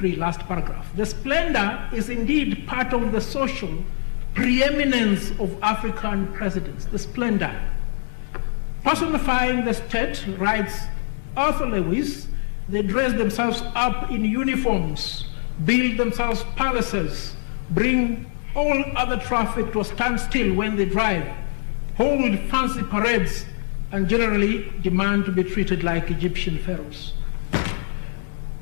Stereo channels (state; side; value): silent; right; digital silence